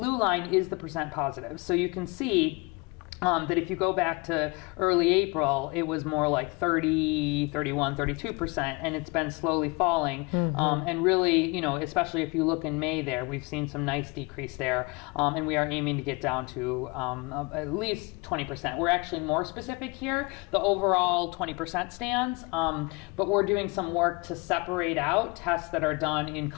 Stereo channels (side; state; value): right; quieter; 27.7 dB